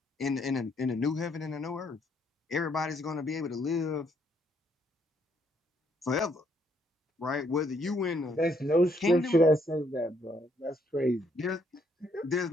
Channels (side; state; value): both; normal; correlation 0.71